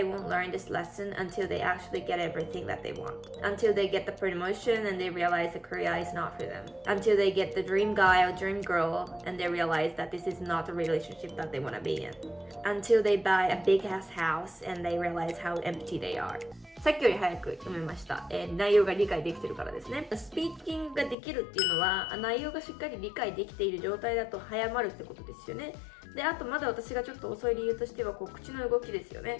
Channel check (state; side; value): drops out; right; at 21.2 s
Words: won't learn this lesson until they actually get everything that they want. Until they get the promotion and they realize the career is not for them. Until they get the dream guy or dream girl and they realize that this is not the relationship that they want to be in. Until they buy a big ass house and they realize how empty they are.さっきより早く読めました、内容が理解できてるからですね。スピーキングができるっていうのは内容がしっかり理解できている状態だと早まるってことですよね。で、あとまだ私がちょっと遅い理由としては口の動きですよ